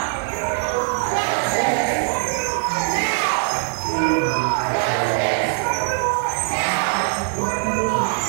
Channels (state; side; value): silent; left; 60 dB below the other